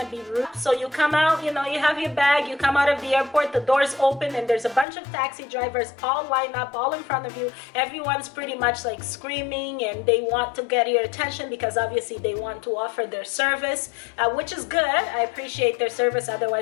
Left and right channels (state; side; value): drops out; right; at 4.9 s